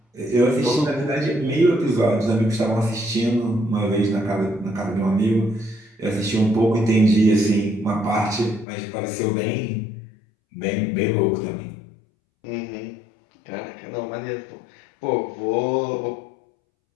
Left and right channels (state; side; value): drops out; right; at 8.7 s